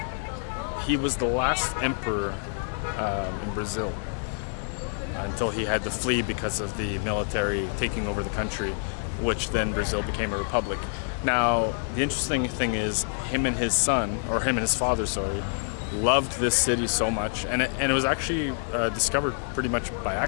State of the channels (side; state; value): right; silent; 60 dB below the other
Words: he was the last emperor in Brazil until he had to flee because of the military taking over the country, which then Brazil became a republic. Now, the interesting thing is him and his father, loved this city so much, and it was actually discovered pretty much by